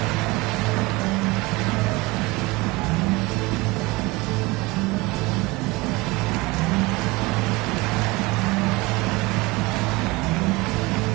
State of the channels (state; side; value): quieter; left; 22.7 dB